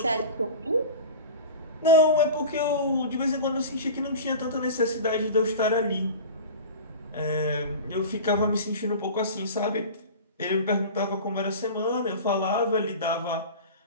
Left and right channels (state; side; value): inverted; both; correlation -0.33